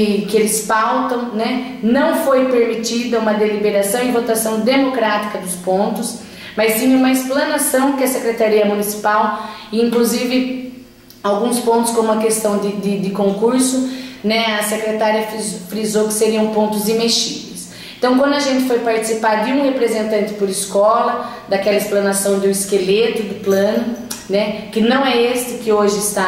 eles pautam, né, não foi permitida uma deliberação e votação democrática dos pontos, mas sim uma explanação que a Secretaria Municipal, e inclusive alguns pontos como a questão de concurso, né, a secretária frisou que seriam pontos imexíveis. Então, quando a gente foi participar de um representante por escola, daquela explanação do esqueleto do plano, né, que não é este que hoje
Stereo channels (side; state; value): both; identical; correlation 1.00